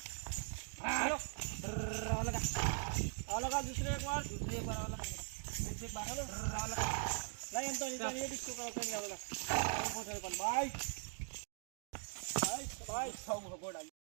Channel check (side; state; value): left; silent; 50 dB below the other